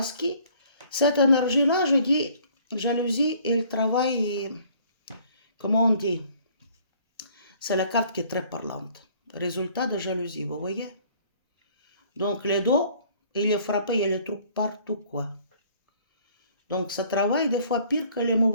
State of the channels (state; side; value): inverted; both; correlation -0.57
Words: que cette énergie-là, je dis, jalousie, elle travaille, comment on dit? C'est la carte qui est très parlante. Résultat de jalousie, vous voyez? Donc les dos, il est frappé, il y a les trucs partout, quoi. Donc ça travaille des fois pire que les